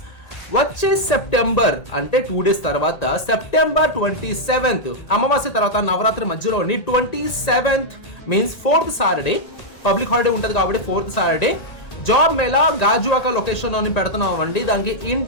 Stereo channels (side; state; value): right; late; 1.8 ms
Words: వచ్చే సెప్టెంబర్ అంటే 2 days తర్వాత సెప్టెంబర్ 27th అమావాస్య తర్వాత నవరాత్రి మధ్యలోని 27th means 4th Saturday public holiday ఉంటుంది కాబట్టి 4th Saturday job mela Gajuwaka location లోని పెడుతున్నామండి. దానికి